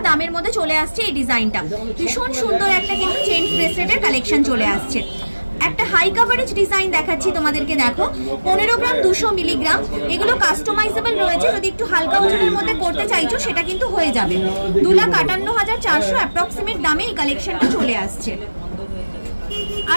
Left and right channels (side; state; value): both; inverted; correlation -1.00